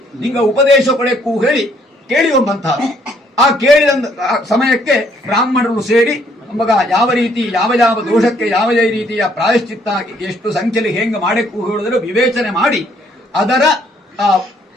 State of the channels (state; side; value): normal; both; correlation 0.66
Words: ನಿಂಗ ಉಪದೇಶ ಕೊಳೆಕ್ಕೂ ಹೇಳಿ ಕೇಳಿಯುವಂತಹ ಆ ಕೇಳಿದ ಸಮಯಕ್ಕೆ ಬ್ರಾಹ್ಮಣರು ಸೇರಿ ಮಗ ಯಾವ ರೀತಿ ಯಾವ ದೋಷಕ್ಕೆ ಯಾವ ರೀತಿಯ ಪ್ರಾಯಶ್ಚಿತ್ತ ಎಷ್ಟು ಸಂಖ್ಯೆಯಲ್ಲಿ ಹೆಂಗೆ ಮಾಡಕ್ಕೂ ಹೇಳಿದ್ರೆ ವಿವೇಚನೆ ಮಾಡಿ ಅದರ